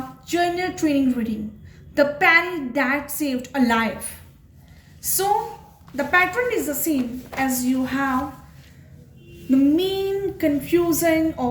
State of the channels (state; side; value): identical; both; correlation 1.00